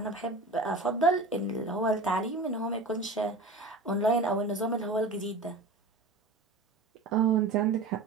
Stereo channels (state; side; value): quieter; left; 3.2 dB